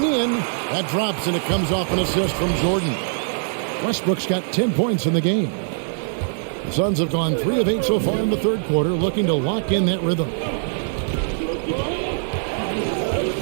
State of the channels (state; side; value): silent; left; digital silence